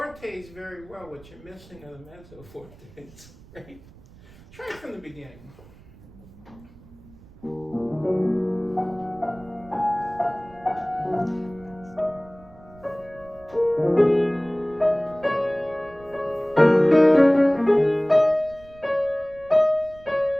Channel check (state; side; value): noise; right; rumble, 23 dB below the sound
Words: very well. What you're missing are the mezzo fortes, right? Try it from the beginning.